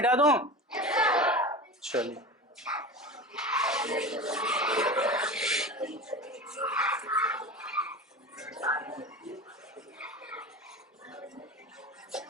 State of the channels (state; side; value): normal; both; correlation 0.30